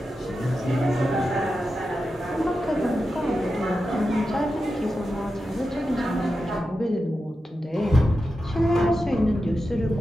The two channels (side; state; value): both; normal; correlation 0.90